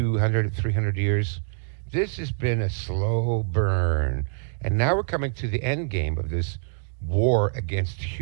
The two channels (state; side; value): silent; left; digital silence